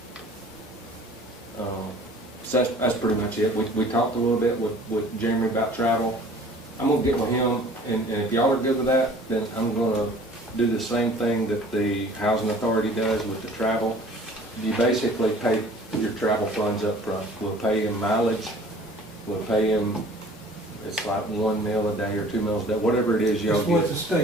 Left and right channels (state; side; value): normal; both; correlation 0.49